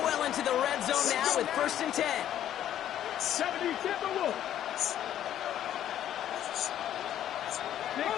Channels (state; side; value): quieter; right; 11.2 dB